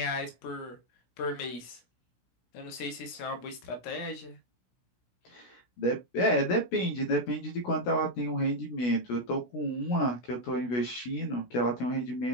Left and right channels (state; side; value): late; right; 17 ms